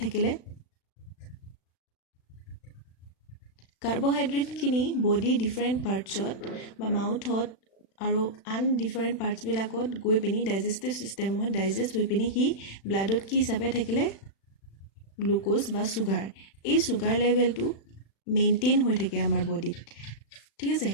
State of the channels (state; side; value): late; right; 36 ms